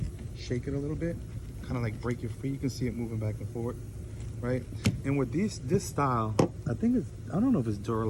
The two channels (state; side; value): identical; both; correlation 1.00